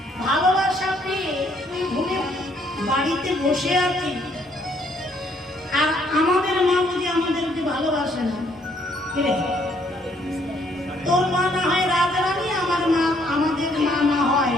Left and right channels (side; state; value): both; normal; correlation 0.67